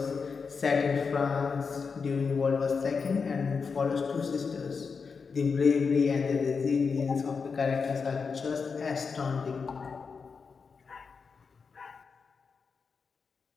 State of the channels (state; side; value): quieter; right; 5.3 dB